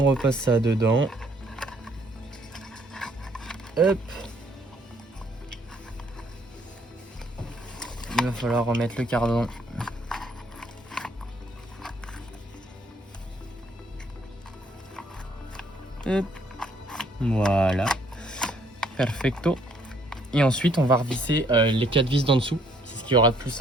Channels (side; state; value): both; normal; correlation 0.65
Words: repasse ça dedans. Hop. Il va falloir remettre le cardan. Hop. Voilà. Perfecto. Et ensuite, on va revisser les 4 vis d'en dessous. C'est ce qui aura de plus